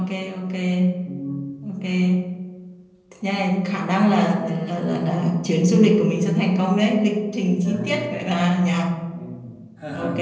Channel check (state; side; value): identical; both; correlation 1.00